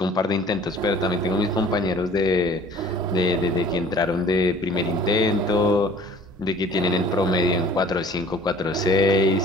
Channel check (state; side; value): normal; both; correlation 0.50